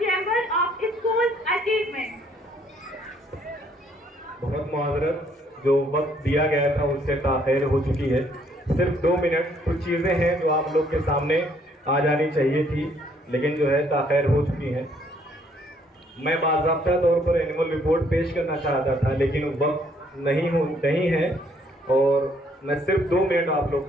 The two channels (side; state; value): both; normal; correlation 0.66